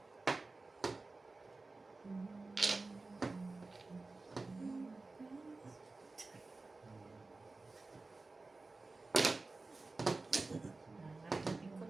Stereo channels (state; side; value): quieter; left; 3.5 dB